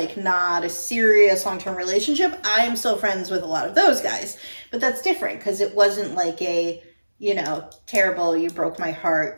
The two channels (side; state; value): both; inverted; correlation -1.00